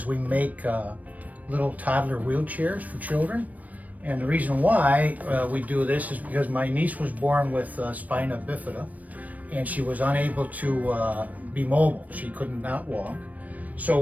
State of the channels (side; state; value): left; late; 0.073 ms